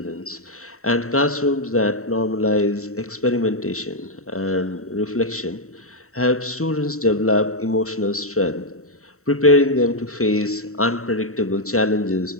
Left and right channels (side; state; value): right; late; 0.64 ms